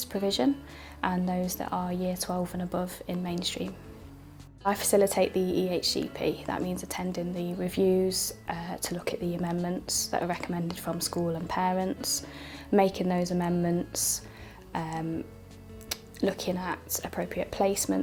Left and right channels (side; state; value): both; identical; correlation 1.00